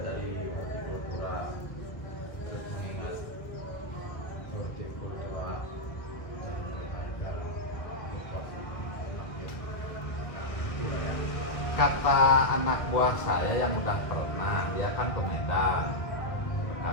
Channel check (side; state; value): right; late; 1.4 ms